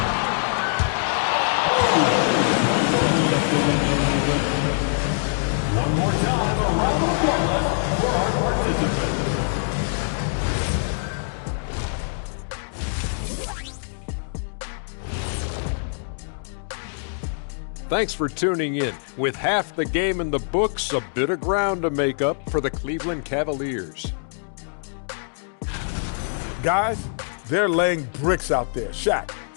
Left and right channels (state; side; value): silent; right; digital silence